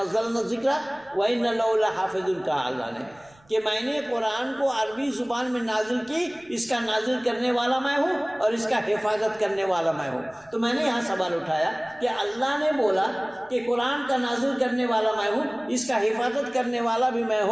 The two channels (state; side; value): noise; right; rumble, 30 dB below the sound